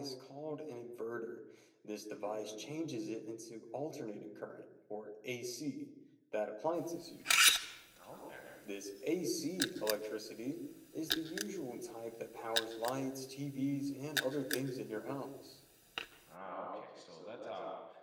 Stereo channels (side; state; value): both; identical; correlation 1.00